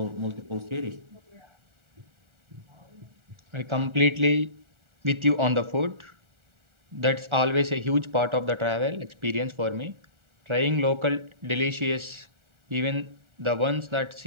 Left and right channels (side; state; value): left; late; 1.4 ms